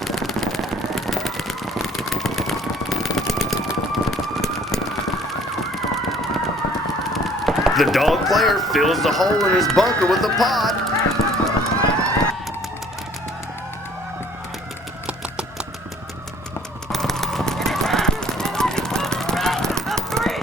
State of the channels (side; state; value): both; normal; correlation 0.56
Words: The dog player fills the hole in his bunker with a pod.